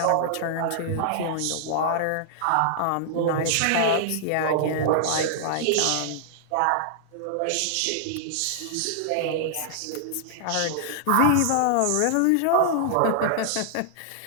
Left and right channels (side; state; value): both; different; correlation -0.01